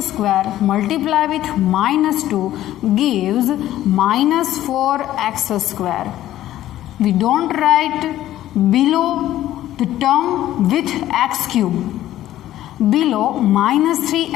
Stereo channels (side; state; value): right; quieter; 13.5 dB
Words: square multiply with minus 2 gives minus 4x square. We don't write below the term with x cube. Below minus